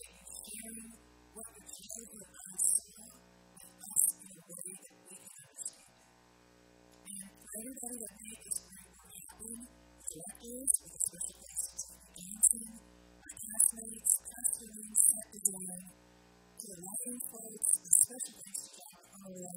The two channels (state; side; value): identical; both; correlation 1.00